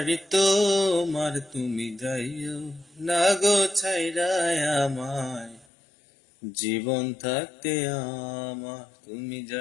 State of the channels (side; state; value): right; drops out; at 5.7 s